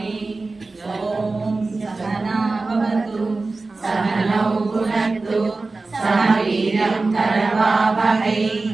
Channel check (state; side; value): quieter; left; 3.6 dB